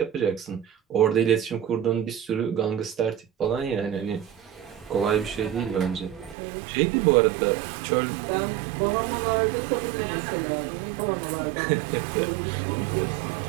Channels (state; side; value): drops out; left; at 6.4 s